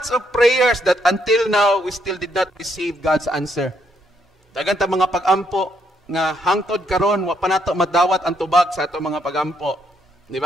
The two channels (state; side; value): normal; both; correlation 0.73